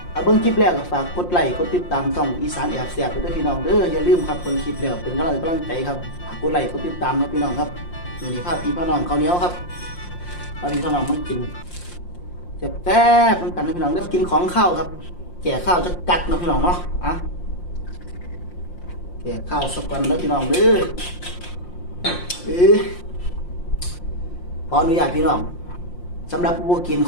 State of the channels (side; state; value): right; late; 5.7 ms